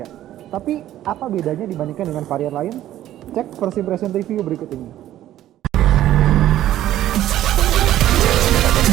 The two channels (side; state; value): left; quieter; 13.0 dB